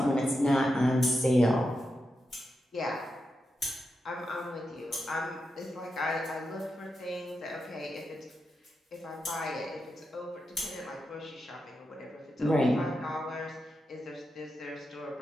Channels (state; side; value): normal; both; correlation 0.88